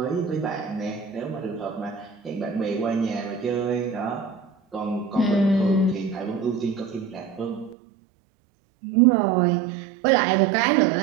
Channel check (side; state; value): left; drops out; at 7.8 s